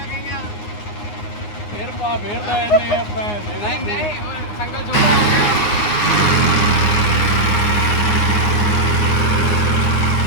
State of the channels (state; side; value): late; right; 9.6 ms